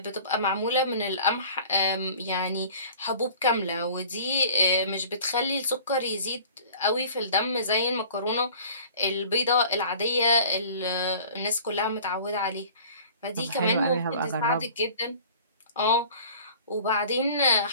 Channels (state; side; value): inverted; both; correlation -0.45